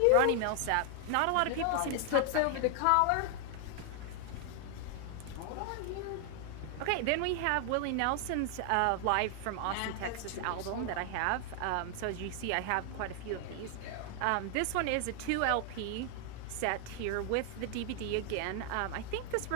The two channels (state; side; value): different; both; correlation 0.00